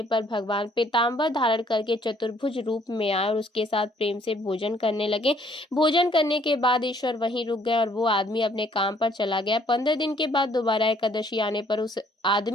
पर भगवान पीताम्बर धारण करके चतुर्भुज रूप में आए और उसके साथ प्रेम से भोजन करने लगे। भोजन करने के बाद ईश्वर वहीं रुक गए और वो आदमी अपने काम पर चला गया। 15 दिन के बाद दोबारा एकादशी आने पर उस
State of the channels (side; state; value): both; normal; correlation 0.63